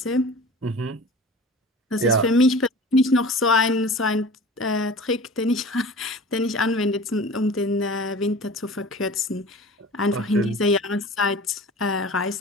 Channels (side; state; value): both; normal; correlation 0.39